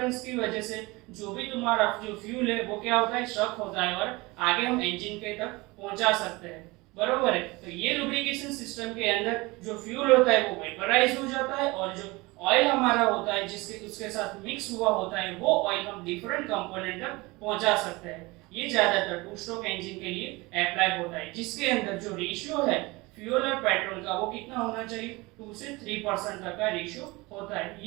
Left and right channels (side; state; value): left; quieter; 23.3 dB